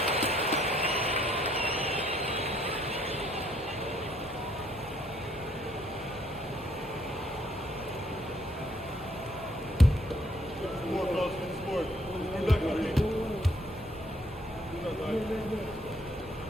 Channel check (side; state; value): both; normal; correlation 0.67